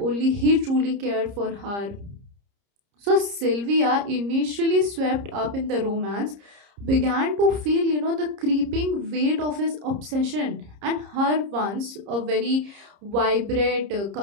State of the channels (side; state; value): left; late; 30 ms